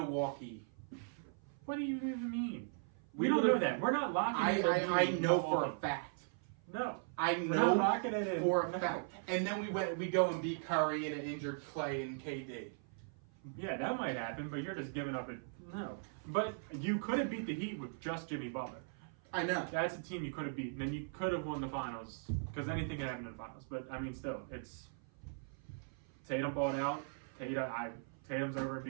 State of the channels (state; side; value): silent; left; 52 dB below the other